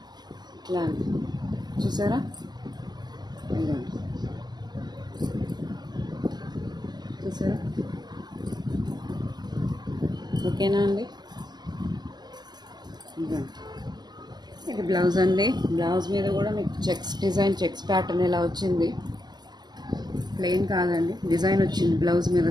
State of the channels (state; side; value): late; left; 0.20 ms